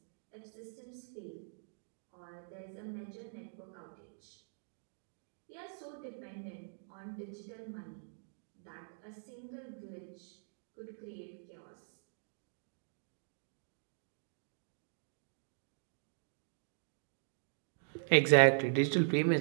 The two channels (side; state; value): left; silent; digital silence